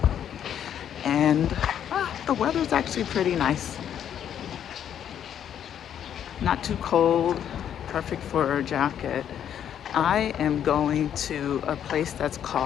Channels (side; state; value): right; quieter; 9.5 dB